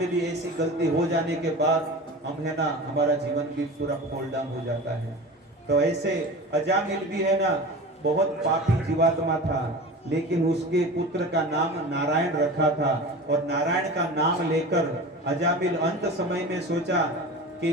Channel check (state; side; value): normal; both; correlation 0.33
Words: भी ऐसी गलती हो जाने के बाद हम है ना, हमारा जीवन भी पूरा फॉल डाउन हो जाता है। तो ऐसे अजामिल भी है ना, बहुत पापी जीवात्मा था, लेकिन उसके पुत्र का नाम नारायण रखा था और नारायण का नाम लेकर अजामिल अंत समय में सोचा कि